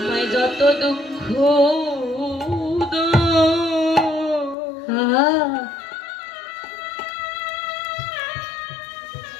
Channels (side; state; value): right; drops out; at 4.5 s